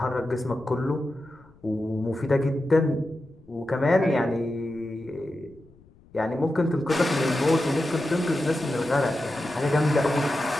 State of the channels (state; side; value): noise; left; rumble, 27 dB below the sound